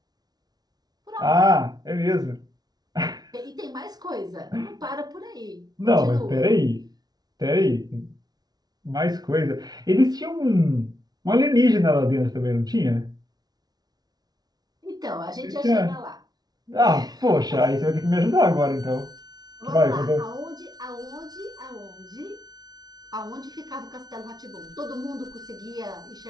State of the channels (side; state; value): left; late; 0.19 ms